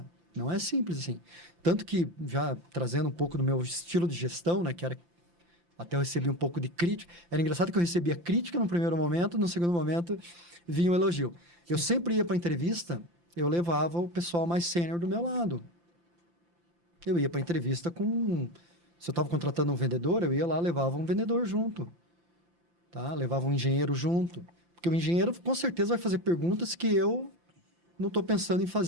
Não é simples assim. Tanto que, já trazendo um pouco do meu estilo de gestão, né, que era... Até eu recebi um pouco de crítica. Era engraçado que eu recebia crítica no primeiro momento, no segundo momento vinha um elogio. Eu sempre ia para a entrevista, eu levava o pessoal mais sênior do meu lado. Eu ia para a entrevista com... Se eu estava contratando um vendedor, eu ia lá, levava um vendedor junto. Tá? Levava um engenheiro junto. Porque o engenheiro, com certeza, vai fazer perguntas que eu não estou pensando em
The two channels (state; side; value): late; left; 5.8 ms